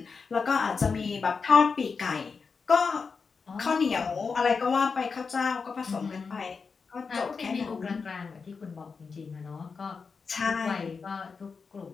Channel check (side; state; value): right; quieter; 5.1 dB